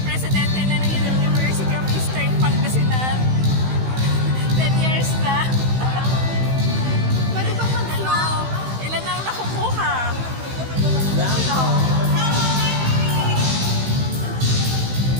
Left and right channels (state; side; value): late; left; 16 ms